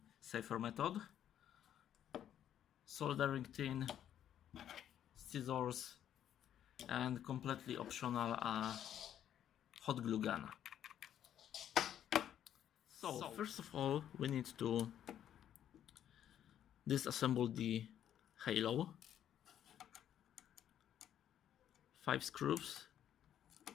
safer method. Soldering tin, scissors, and completely optional hot glue gun. So first of all, we need to disassemble the halo. 5 screws.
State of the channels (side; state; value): right; quieter; 10.4 dB